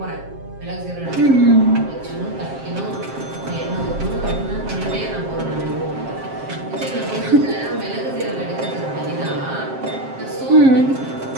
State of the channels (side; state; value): left; late; 7.5 ms